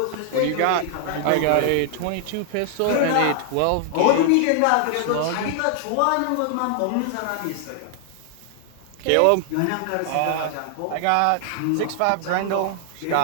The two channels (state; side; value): different; both; correlation 0.00